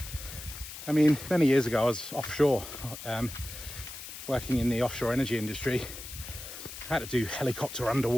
I mean, many years ago I was offshore, working in the offshore energy industry. I had to do helicopter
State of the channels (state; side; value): noise; left; hiss, 11 dB below the sound